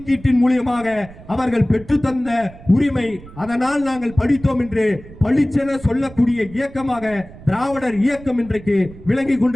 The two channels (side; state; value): right; noise; rumble, 18 dB below the sound